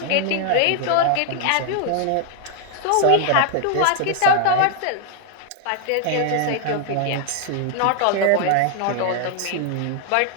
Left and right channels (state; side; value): different; both; correlation 0.00